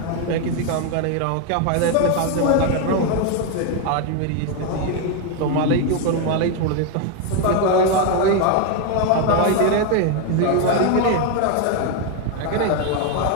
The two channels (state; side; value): different; both; correlation 0.01